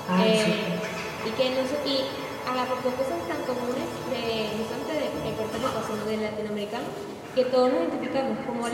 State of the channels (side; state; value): both; identical; correlation 1.00